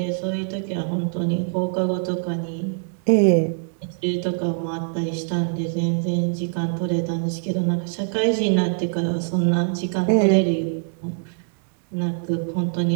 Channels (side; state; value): left; silent; digital silence